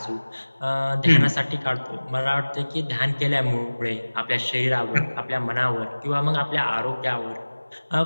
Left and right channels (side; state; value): both; inverted; correlation -1.00